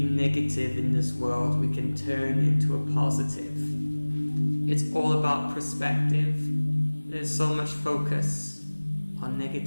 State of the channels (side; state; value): both; inverted; correlation -1.00